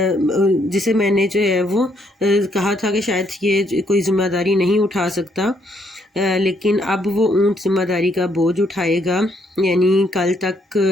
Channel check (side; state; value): both; normal; correlation 0.71